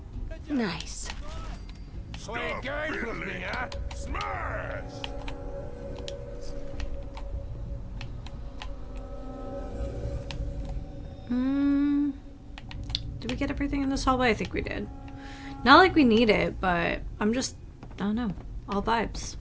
Nice. Sweet games with me, huh? Smash! Did we get everything in this hallway? I think we did. Not like we need it, but I don't know. All vibes.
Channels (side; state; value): both; identical; correlation 1.00